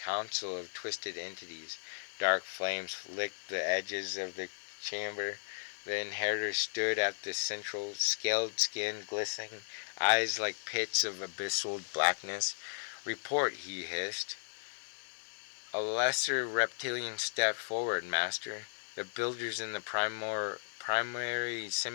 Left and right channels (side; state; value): right; silent; digital silence